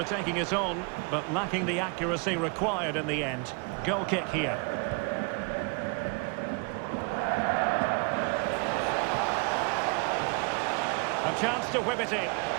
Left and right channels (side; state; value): left; quieter; 33.0 dB